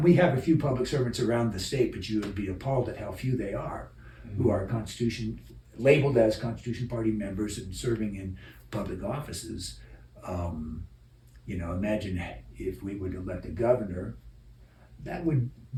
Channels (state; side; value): identical; both; correlation 1.00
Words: we have a few public servants around the state, but you would be appalled at how few they are who are labeled as Constitution Party members and serving in public offices. Imagine if we would elect a governor, that would